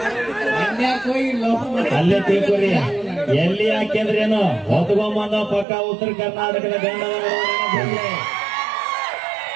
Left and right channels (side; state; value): left; drops out; at 5.7 s